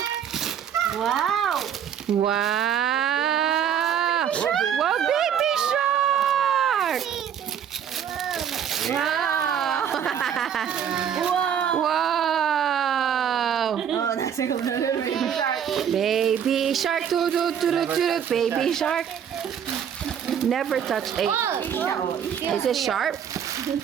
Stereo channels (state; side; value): quieter; left; 8.6 dB